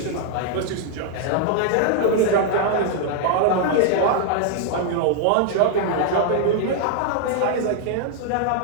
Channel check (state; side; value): different; both; correlation 0.00